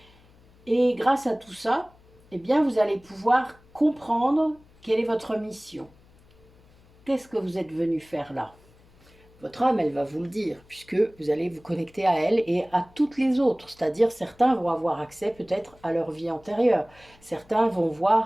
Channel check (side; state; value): left; noise; hum, 28 dB below the sound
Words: Et grâce à tout ça, eh bien, vous allez pouvoir comprendre quelle est votre mission. Qu'est-ce que vous êtes venu faire là? Votre âme, elle va vous le dire, puisque vous allez vous connecter à elle et à toutes les autres. C'est-à-dire, certains vont avoir accès peut-être à leur vie antérieure. Certains vont